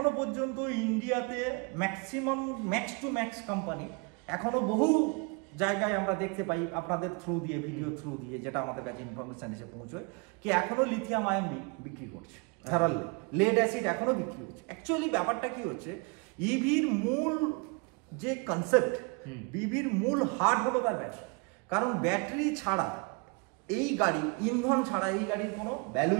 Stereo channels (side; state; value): left; quieter; 31.6 dB